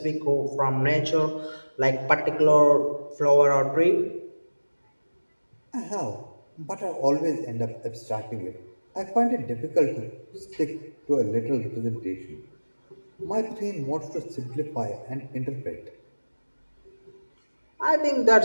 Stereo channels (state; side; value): inverted; both; correlation -1.00